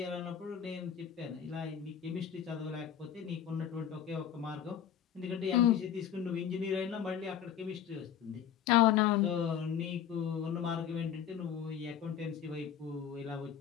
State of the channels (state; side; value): quieter; right; 9.2 dB